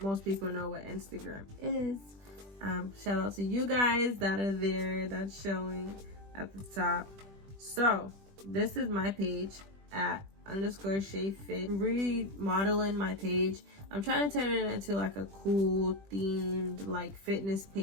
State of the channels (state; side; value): late; left; 20 ms